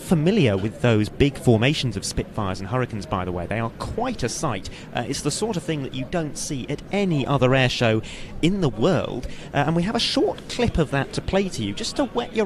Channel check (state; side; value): identical; both; correlation 1.00